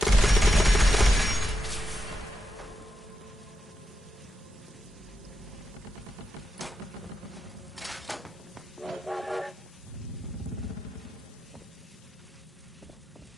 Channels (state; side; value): normal; both; correlation 0.85